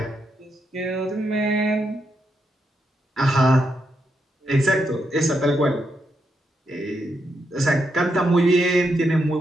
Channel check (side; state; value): both; normal; correlation 0.82